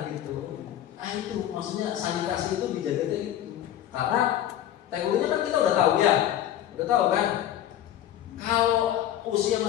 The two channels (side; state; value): right; quieter; 11.6 dB